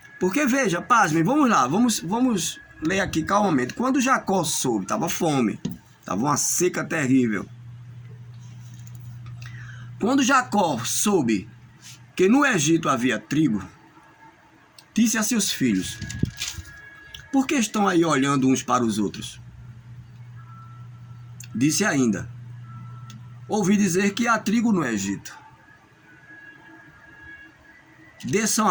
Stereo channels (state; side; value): identical; both; correlation 1.00